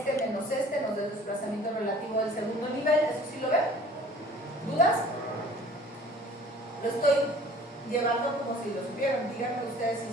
menos este nos da el desplazamiento relativo del segundo nivel. ¿Eso sí lo ven? ¿Dudas? Lo estoy llevando como si lo supieran. Díganme ustedes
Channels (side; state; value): both; normal; correlation 0.49